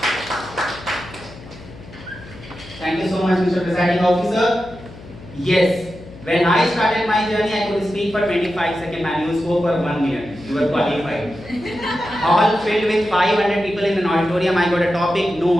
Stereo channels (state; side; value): noise; left; hum, 18 dB below the sound